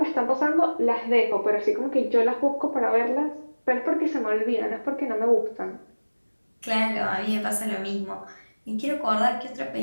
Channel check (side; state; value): both; inverted; correlation -1.00